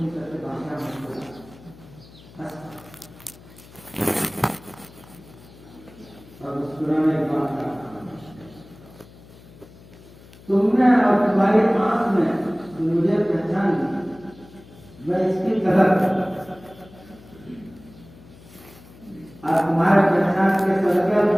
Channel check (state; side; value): noise; left; hum, 22 dB below the sound